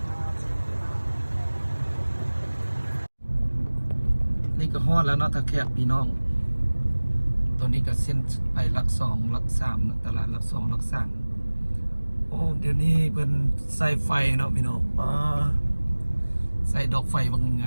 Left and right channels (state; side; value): inverted; both; correlation -1.00